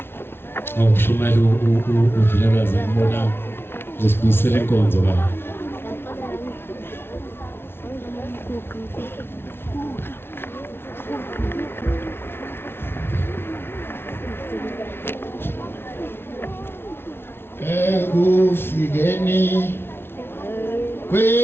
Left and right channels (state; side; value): late; right; 0.11 ms